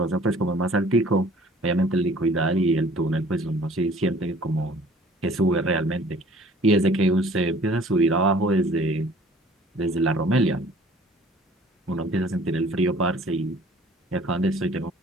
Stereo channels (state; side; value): normal; both; correlation 0.52